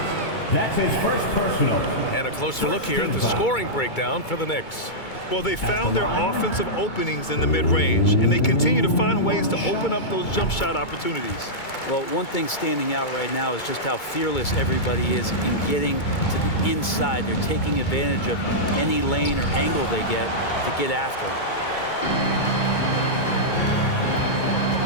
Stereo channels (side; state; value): right; late; 2.2 ms